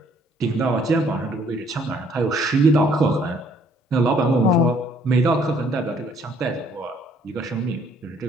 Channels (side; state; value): both; normal; correlation 0.63